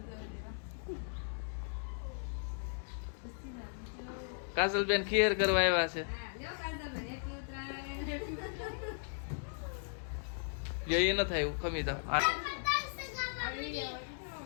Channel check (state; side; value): silent; right; digital silence